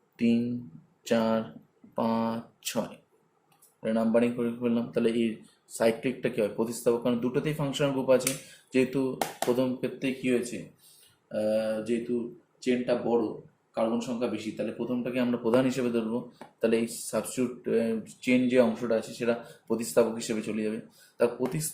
3 4 5 6 নাম্বারিং করে ফেললাম। তাহলে এই সাইক্লিকটা কি হয়? প্রতিস্থাপক, কারণ দুটোতেই ফাংশনাল গ্রুপ আছে। যেহেতু প্রথম ক্ষেত্রে কি হয়েছে, যেহেতু চেনটা বড়, কার্বন সংখ্যা বেশি, তাহলে প্রথমটাকে আমরা প্রধান হিসেবে ধরবো। তাহলে এই সাবস্টিটিউট চেন যে অংশটা আছে সেটা প্রতিস্থাপক হিসেবে চলে যাবে। তার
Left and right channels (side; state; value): both; identical; correlation 1.00